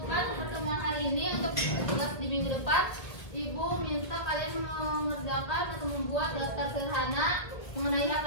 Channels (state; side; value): late; right; 1.6 ms